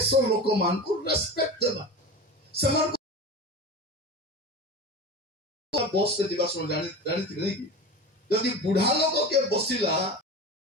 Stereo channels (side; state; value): both; normal; correlation 0.29